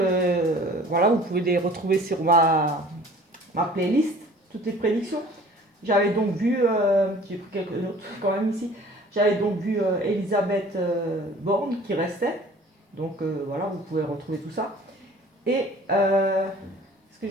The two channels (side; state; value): both; normal; correlation 0.48